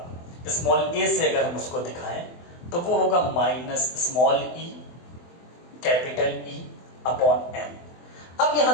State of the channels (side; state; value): right; late; 24 ms